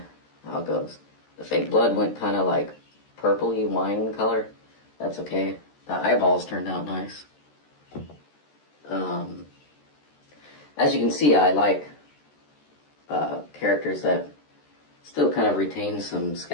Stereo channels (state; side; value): late; right; 13 ms